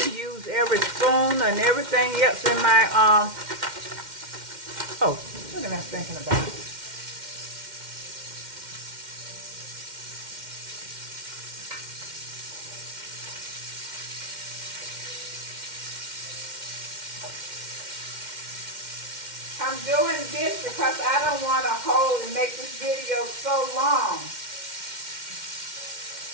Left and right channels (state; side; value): late; left; 2.1 ms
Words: used every spoon and everything else in my, oh, what am I thinking about? I'm doing this because I don't want to hold and make this video so long